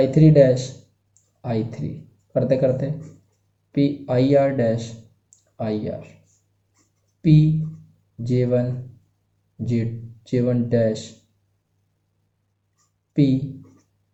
three dash I three, करते करते P I R dash I R, P J1 J1 dash, P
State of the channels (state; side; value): identical; both; correlation 1.00